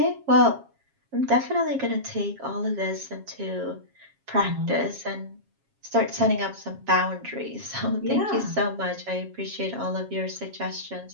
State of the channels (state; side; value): late; left; 7.3 ms